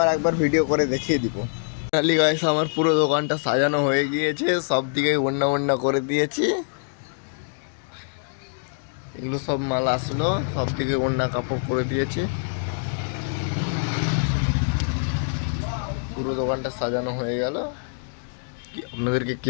একবার ভিডিও করে দেখিয়ে দিব। ফাইনালি গাইস, আমার পুরো দোকানটা সাজানো হয়ে গিয়েছে, সব দিকে ওড়না ওড়না করে দিয়েছি। এগুলো সব মাল আসলো, সব দিকে ওড়না কাপড় করে দিয়েছি। পুরো দোকানটা সাজানো হয়ে গেল। আপনাদেরকে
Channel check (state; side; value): silent; right; digital silence